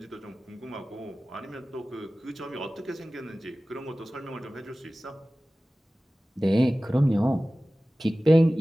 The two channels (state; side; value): normal; both; correlation 0.97